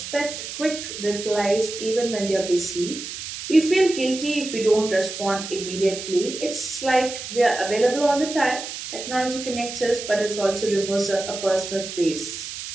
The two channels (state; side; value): noise; right; hiss, 8 dB below the sound